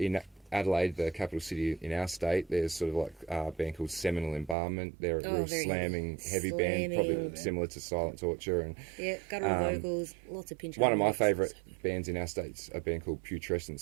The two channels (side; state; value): left; drops out; at 4.5 s